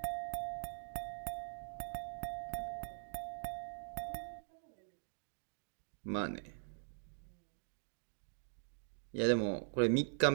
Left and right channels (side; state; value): left; silent; digital silence